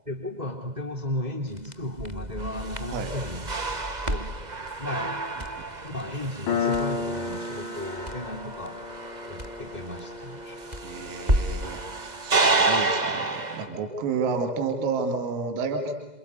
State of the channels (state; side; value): late; left; 2.0 ms